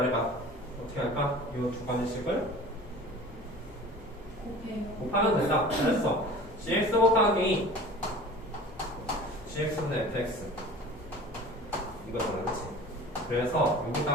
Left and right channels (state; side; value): normal; both; correlation 0.41